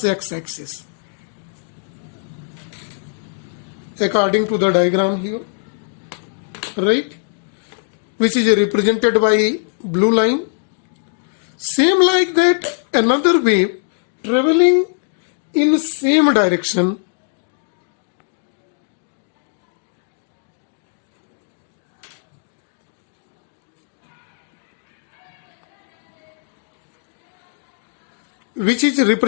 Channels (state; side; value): silent; right; digital silence